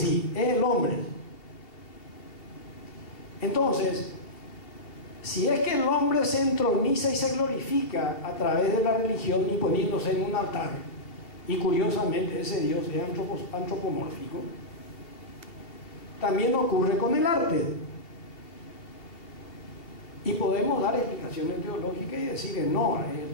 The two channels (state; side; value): late; right; 2.8 ms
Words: es el hombre. Entonces, si es que el hombre se entroniza y se glorifica a través de la religión y poniéndose en un altar, y curiosamente ese Dios es antropomórfico, también ocurre con el arte. Y podemos dar explicaciones teológicas y decir que no, es